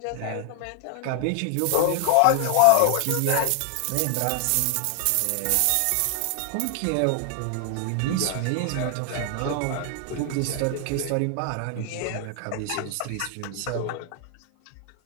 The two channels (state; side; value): different; both; correlation 0.00